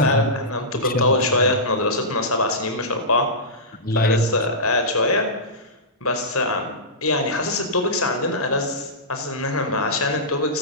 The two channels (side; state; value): both; normal; correlation -0.16